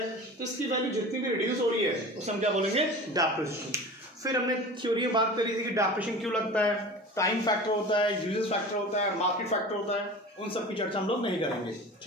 तो इसकी वैल्यू जितनी भी रिड्यूस हो रही है उसे हम क्या बोलेंगे? डेप्रिसिएशन। फिर हमने थ्योरी में बात करी थी कि डेप्रिसिएशन क्यों लगता है, टाइम फैक्टर होता है, यूजेस फैक्टर होता है, मार्केट फैक्टर होता है, उन सब की चर्चा हम लोग नहीं करेंगे।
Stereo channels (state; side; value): normal; both; correlation 0.36